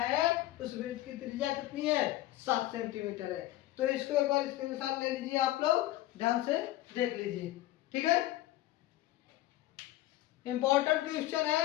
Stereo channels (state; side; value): quieter; right; 15.6 dB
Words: उस वृत्त की त्रिज्या कितनी है, 7 सेंटीमीटर है। तो इसको एक बार स्क्रीनशॉट ले लीजिए, आप लोग ध्यान से देख लीजिए। ठीक है, इंपॉर्टेंट क्वेश्चन